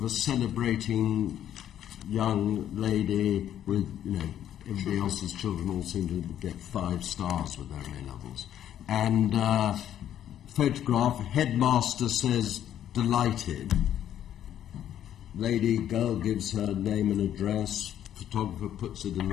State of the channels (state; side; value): quieter; right; 10.8 dB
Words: a celebrating young lady with, everybody else's children all seem to get 5 stars with their A-levels. And photograph, headmaster says, delighted. Girl gives her name and address, photographer puts it in